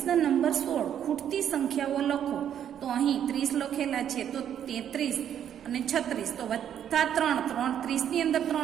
નંબર 16 ખૂટતી સંખ્યાઓ લખો. તો અહીં 30 લખેલા છે, તો 33 અને 36, તો વત્તા 3, 30 ની અંદર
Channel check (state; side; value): quieter; left; 9.6 dB